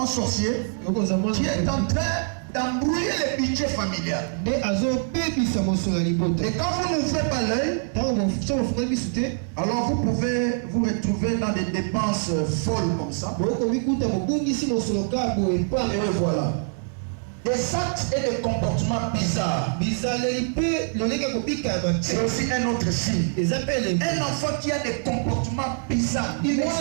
sorcier qui est en train d'embrouiller le budget familial. Et quand vous n'ouvrez pas l'œil, alors vous pouvez vous retrouver dans des dépenses folles comme ça. Et voilà. Des actes et des comportements bizarres. C'est aussi un autre signe. Un enfant qui a des comportements bizarres. Il est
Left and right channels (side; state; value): left; silent; 62 dB below the other